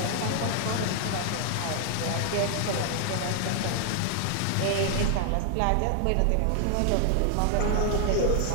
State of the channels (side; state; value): both; different; correlation 0.00